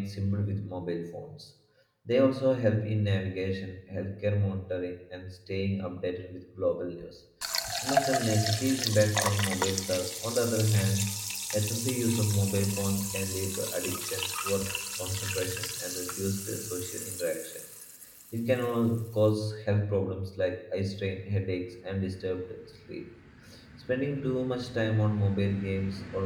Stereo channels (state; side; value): identical; both; correlation 1.00